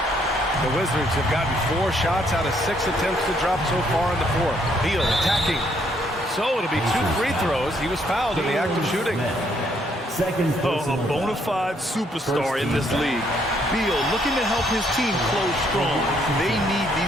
The Wizards have gotten 4 shots out of 6 attempts to drop so far in the 4th. Beal attacking. So it'll be 2 free throws. He was fouled in the act of shooting. A bona fide superstar in this league. Beal looking to help his team close strong. They need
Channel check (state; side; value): normal; both; correlation 0.70